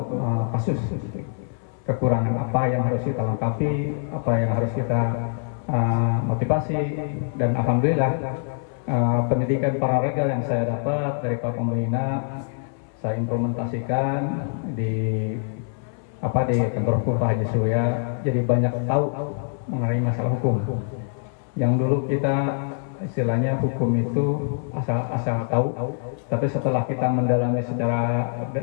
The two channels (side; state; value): right; silent; 60 dB below the other